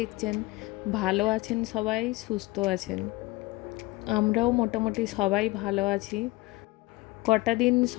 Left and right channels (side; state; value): right; quieter; 21.6 dB